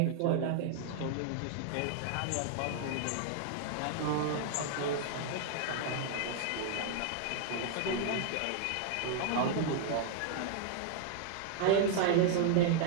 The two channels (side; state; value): both; different; correlation 0.00